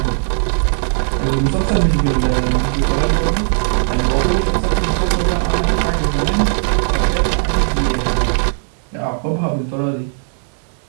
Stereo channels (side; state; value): left; silent; 68 dB below the other